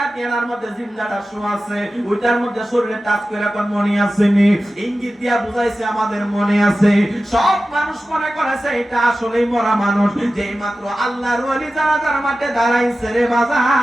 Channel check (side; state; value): both; normal; correlation 0.94